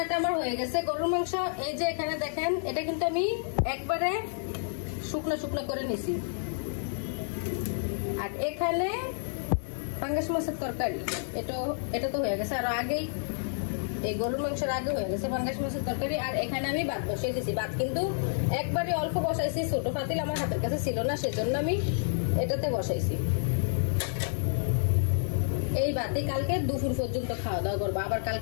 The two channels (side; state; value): right; silent; digital silence